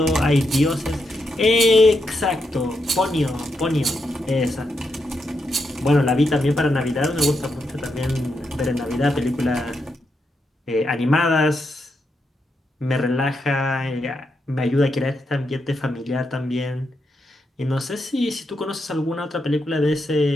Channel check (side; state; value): both; normal; correlation 0.83